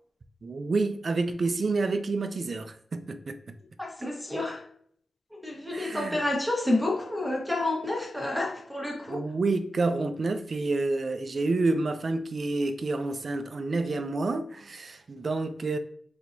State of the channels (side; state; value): both; normal; correlation 0.91